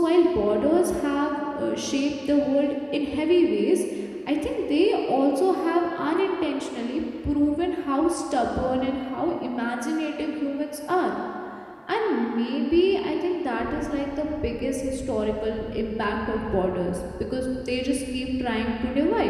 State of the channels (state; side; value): identical; both; correlation 1.00